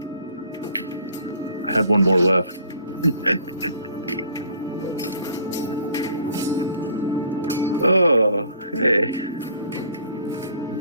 I had one more left. Oh, hey.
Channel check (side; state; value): both; inverted; correlation -0.55